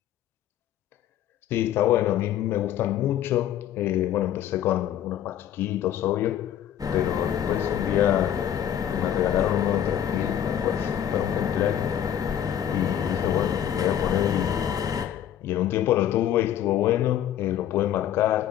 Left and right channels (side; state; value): right; quieter; 10.5 dB